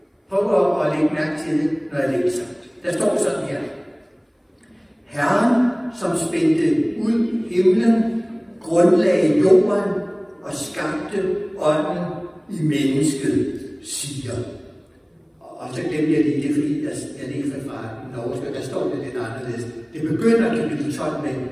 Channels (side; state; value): both; identical; correlation 1.00